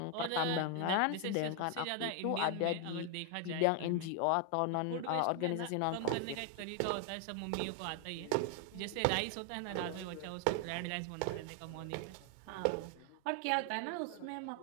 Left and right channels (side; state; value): both; different; correlation 0.00